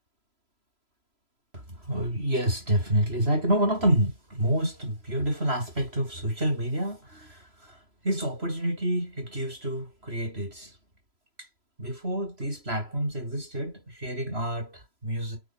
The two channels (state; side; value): late; left; 3.0 ms